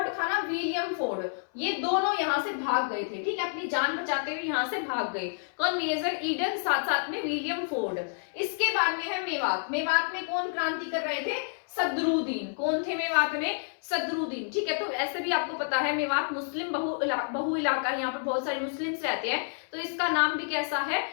था ना, विलियम फोर्ड, ये दोनों यहाँ से भाग गए थे। ठीक है, अपनी जान बचाते हुए यहाँ से भाग गए। कौन, मेजर ईडन, साथ साथ में विलियम फोर्ड। इसके बाद में है मेवात। मेवात में कौन क्रांति कर रहे थे, सदरुद्दीन। कौन थे मेवात में, सदरुद्दीन। ठीक है, तो ऐसे भी आपको पता है मेवात मुस्लिम बहु इलाका, यहाँ पर बहुत सारे मुस्लिम्स रहते हैं, तो इसका नाम भी कैसा है,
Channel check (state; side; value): silent; right; 58 dB below the other